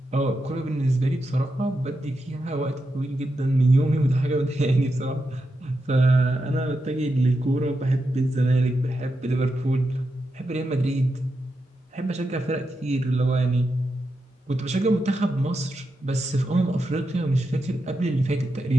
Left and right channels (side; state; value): both; normal; correlation 0.87